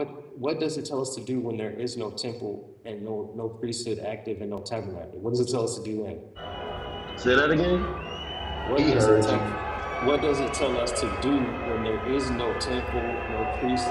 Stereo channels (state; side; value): identical; both; correlation 1.00